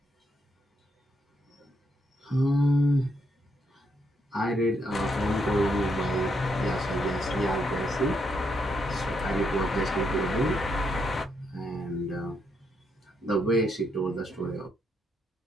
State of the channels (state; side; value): normal; both; correlation 0.77